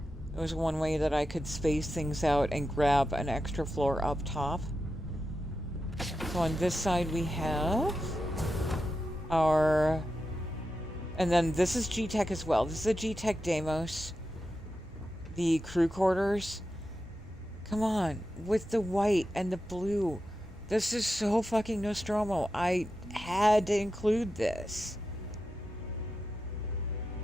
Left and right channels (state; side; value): normal; both; correlation 0.90